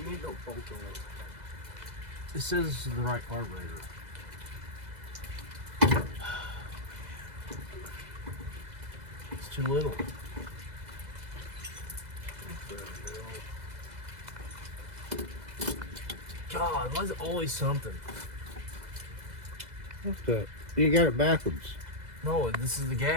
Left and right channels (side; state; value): left; late; 2.0 ms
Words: need no bolt on it. It says this is the right carburetor. It's too little. God, why is it always something? What's that? You got it backwards. No, this is the